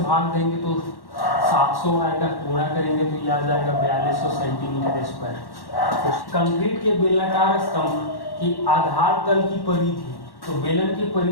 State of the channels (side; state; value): right; late; 1.1 ms